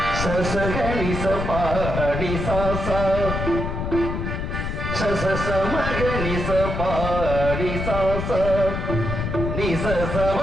சசகணி சபாணி சாசா சசமகணி சபாணி சாசா நீ சசம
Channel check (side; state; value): left; noise; rumble, 3 dB below the sound